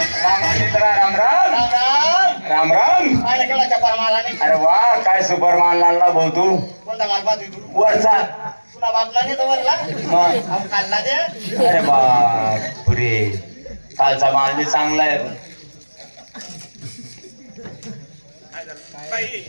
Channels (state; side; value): inverted; both; correlation -1.00